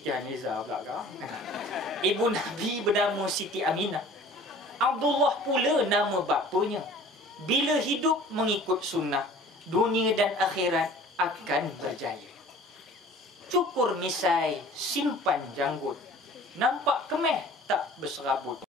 Haniza belakang. Ibu Nabi bernama Siti Aminah. Abdullah pula nama bapanya. Bila hidup mengikut sunnah, dunia dan akhirat akan berjaya. Cukur misai, simpan janggut. Nampak kemeh, tak berserabut.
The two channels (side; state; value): both; normal; correlation 0.46